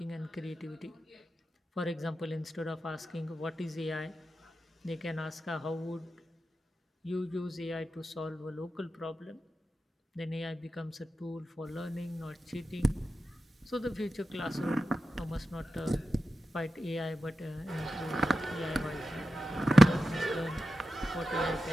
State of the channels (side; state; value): both; normal; correlation 0.91